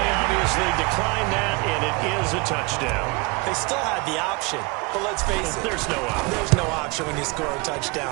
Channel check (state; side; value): quieter; left; 27.2 dB